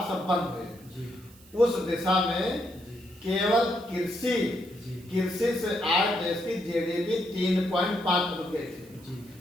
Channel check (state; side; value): noise; right; hiss, 25 dB below the sound